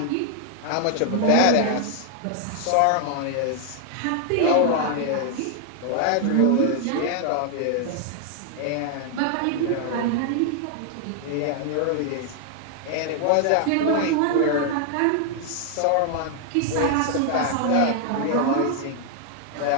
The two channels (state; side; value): different; both; correlation 0.00